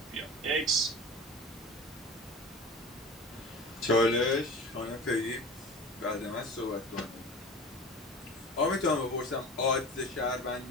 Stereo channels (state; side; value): normal; both; correlation 0.35